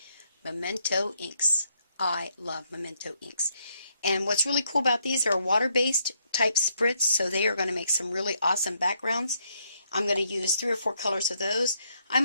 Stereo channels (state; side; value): inverted; both; correlation -0.74